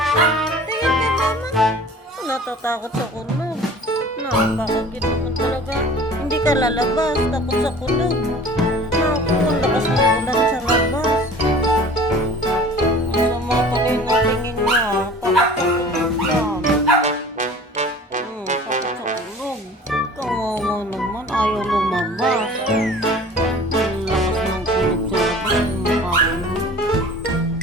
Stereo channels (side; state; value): both; normal; correlation 0.44